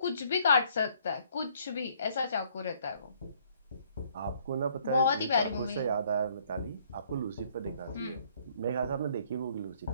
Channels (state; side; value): inverted; both; correlation -0.63